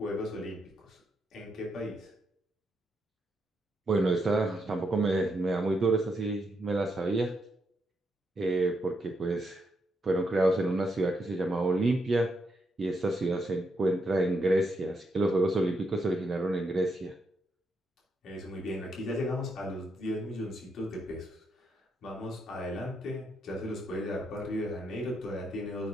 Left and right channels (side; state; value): both; normal; correlation 0.80